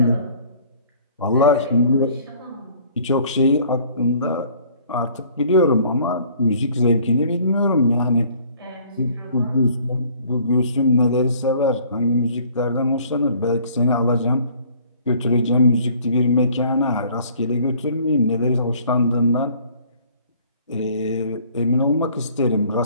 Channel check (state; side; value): inverted; both; correlation -0.55